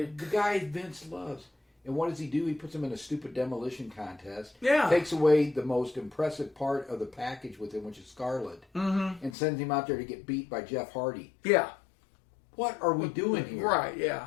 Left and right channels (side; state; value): right; drops out; at 9.3 s